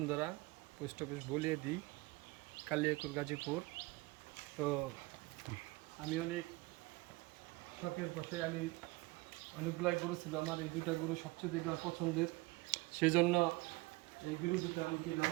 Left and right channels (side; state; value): left; quieter; 22.6 dB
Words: পোস্ট অফিস বলিয়ে দিই, কালিয়াকুর, গাজীপুর। তো আমি অনেক শখের বসে আমি অনেকগুলাই গরু ছিল আমার, এই দুটা গরু সবচেয়ে দেখে আমার পছন্দের, সেই জন্য এই গরু দুটো আমি কি